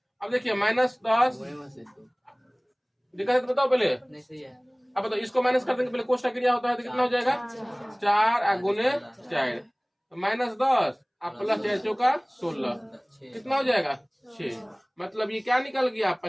अब देखिए -10 दिखा है तो बताओ पहले। अब बताओ इसको माइनस कर देंगे, पहले कोष्टक क्रिया होता है तो कितना हो जाएगा 4 गुने 4, -10 आप प्लस 4 चौका 16, कितना हो जाएगा 6। मतलब ये क्या निकल गया,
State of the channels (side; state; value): both; identical; correlation 1.00